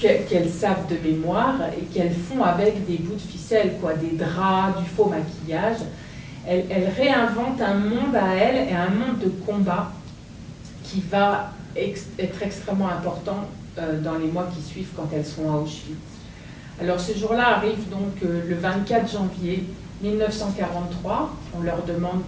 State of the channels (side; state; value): both; identical; correlation 1.00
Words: savent de mémoire, et qu'elles font avec des bouts de ficelle, quoi, des draps, du faux maquillage. Elles réinventent un monde à elles, et un monde de combat qui va être extrêmement important dans les mois qui suivent quand elles sont à Auschwitz. Alors ce jour-là arrive donc le 24 janvier 1943. On leur demande